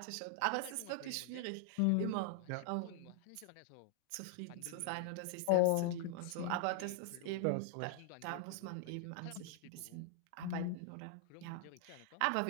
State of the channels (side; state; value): both; different; correlation -0.01